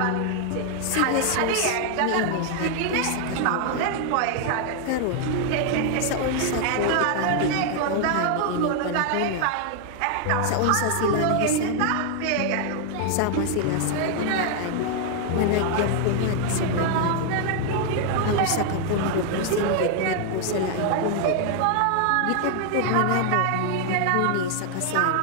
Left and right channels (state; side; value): different; both; correlation 0.00